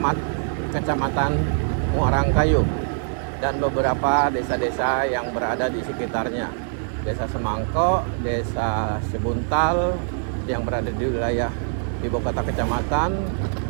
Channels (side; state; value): left; silent; 57 dB below the other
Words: kecamatan Muarangkayu dan beberapa desa-desa yang berada di sekitarnya. Desa Semangko, Desa Sebuntal yang berada di wilayah ibu kota kecamatan,